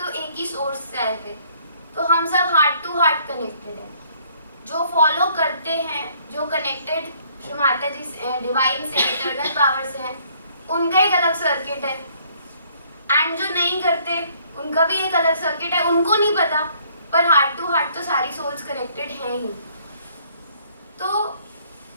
एक ही सोर्स से आए थे, तो हम सब हार्ट टू हार्ट कनेक्टेड हैं। जो फॉलो करते हैं, जो कनेक्टेड श्री माता जी से, डिवाइन से, इटर्नल पावर से हैं, उनका एक अलग सर्किट है। एंड जो नहीं करते उनका भी एक अलग सर्किट है, उनको नहीं पता, पर हार्ट टू हार्ट तो सारी सोल्स कनेक्टेड हैं ही। तो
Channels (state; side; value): inverted; both; correlation -0.63